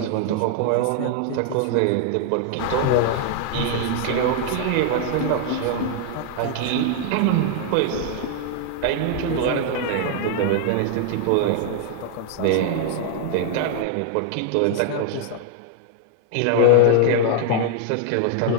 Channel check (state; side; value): different; both; correlation 0.00